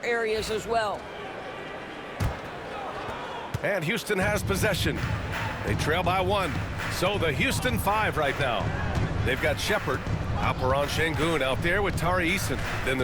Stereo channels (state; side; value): identical; both; correlation 1.00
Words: areas as well. And Houston has possession. They trail by 1. So the Houston 5 right now. They've got Shepard. Alperen Şengün out there with Tari Eason. Then